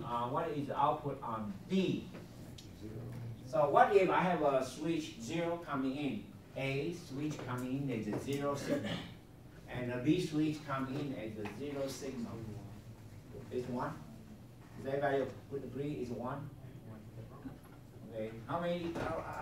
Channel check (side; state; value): both; identical; correlation 1.00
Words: D? So what if I have a switch 0 coming in? A switch coming in as a 0 signal. And a B switch coming in as a 0 signal. It's 1? Does everybody agree it's 1? Okay. How many?